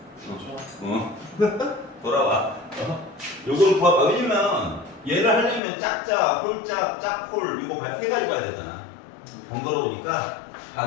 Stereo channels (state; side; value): drops out; right; at 5.6 s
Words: 돌아와. 요걸 구하봐. 왜냐면 얘를 하려면 짝짝, 홀짝, 짝홀 이거 세 가지 봐야 되잖아. 번거로우니까